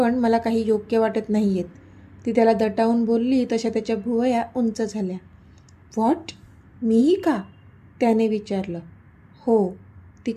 मला काही योग्य वाटत नाही आहेत. ती त्याला दटावून बोलली तशा त्याच्या भुवया उंच झाल्या. व्हॉट? मीही का? त्याने विचारलं. हो, ती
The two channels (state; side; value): identical; both; correlation 1.00